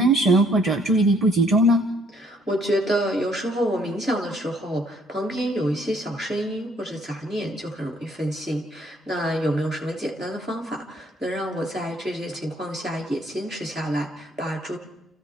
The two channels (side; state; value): both; normal; correlation 0.65